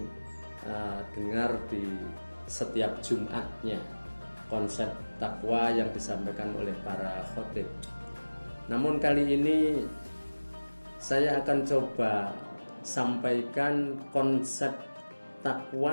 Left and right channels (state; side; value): inverted; both; correlation -1.00